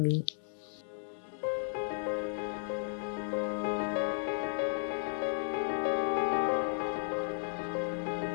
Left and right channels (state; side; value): silent; right; digital silence